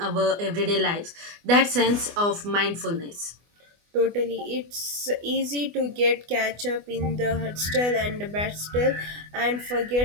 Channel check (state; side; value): late; left; 24 ms